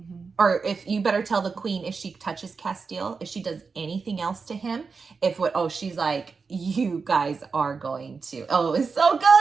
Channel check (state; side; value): quieter; left; 4.9 dB